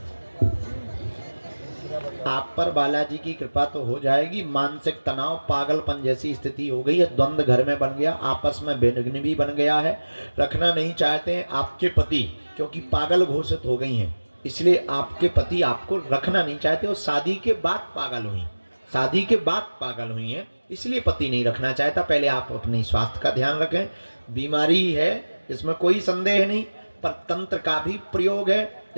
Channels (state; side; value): inverted; both; correlation -1.00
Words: आप पर बालाजी की कृपा तो हो जाएगी। मानसिक तनाव, पागलपन जैसी स्थिति हो गई है, द्वंद्व घर में बन गया, आपस में विघ्न भी बन गया है। रखना नहीं चाहते हैं आपके पति, क्योंकि पागल घोषित हो गई हैं, इसलिए आपके पति आपको रखना नहीं चाहते। और शादी के बाद पागल हुई, शादी के बाद पागल हुई हैं, इसलिए पति नहीं रखना चाहता। पहले आप अपने स्वास्थ्य का ध्यान रखें। बीमारी है इसमें कोई संदेह नहीं, पर तंत्र का भी प्रयोग है